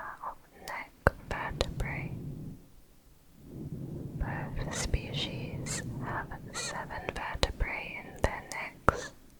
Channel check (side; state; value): both; identical; correlation 1.00